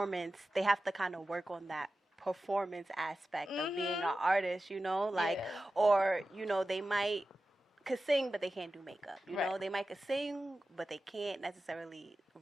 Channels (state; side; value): normal; both; correlation 0.94